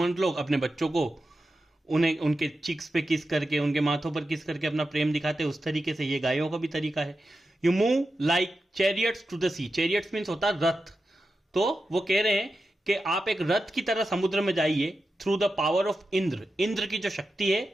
लोग अपने बच्चों को उन्हें उनके चिक्स पे किस करके, उनके माथों पर किस करके अपना प्रेम दिखाते हैं, उस तरीके से ये गायों का भी तरीका है। You move like chariots to the sea, chariots means होता है रथ, तो वो कह रहे हैं कि आप एक रथ की तरह समुद्र में जाइए, through the power of Indra, Indra की जो शक्ति है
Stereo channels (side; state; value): both; normal; correlation 0.91